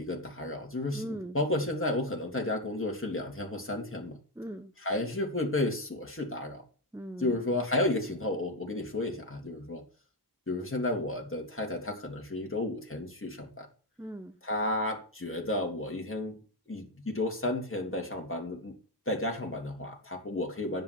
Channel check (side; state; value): both; normal; correlation 0.08